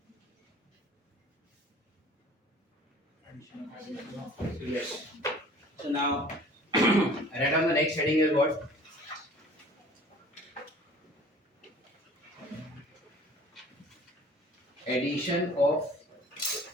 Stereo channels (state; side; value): normal; both; correlation 0.48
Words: So yes. So now, write down the next heading is what? Addition of